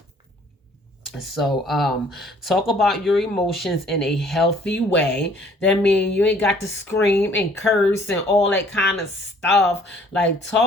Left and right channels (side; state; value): both; normal; correlation 0.58